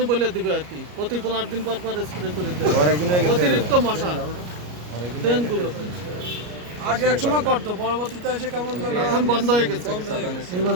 বলে দিবে আর কি, প্রতি 15 দিন পর পর স্প্রে করে দেবে অতিরিক্ত মশা ড্রেনগুলো। আগে এক সময় করতো, পরবর্তীতে এসে কেমন এখন বন্ধ হয়ে গেছে। এই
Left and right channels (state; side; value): late; left; 33 ms